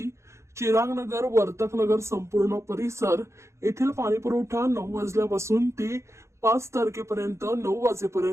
चिरागनगर, वर्तकनगर संपूर्ण परिसर येथील पाणी पुरवठा 9 वाजल्यापासून ते 5 तारखेपर्यंत 9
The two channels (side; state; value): left; late; 0.14 ms